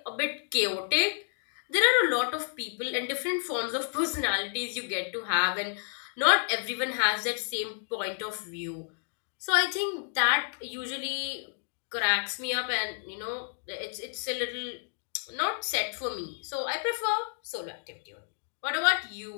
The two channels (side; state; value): right; silent; 58 dB below the other